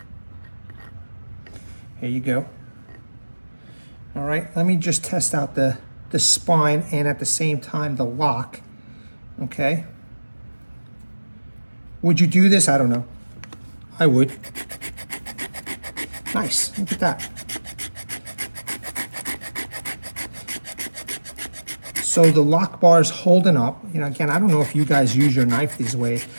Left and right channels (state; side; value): inverted; both; correlation -1.00